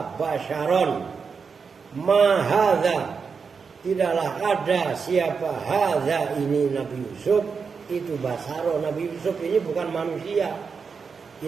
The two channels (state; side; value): quieter; left; 5.5 dB